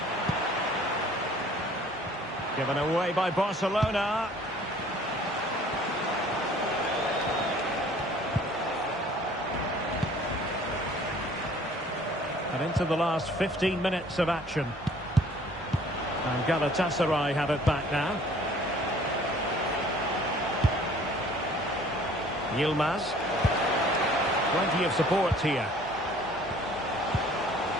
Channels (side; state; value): both; normal; correlation 0.53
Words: Given away by Barcelona. And into the last 15 minutes of action. And Galatasaray have it back now. Yilmaz. Plenty of support here.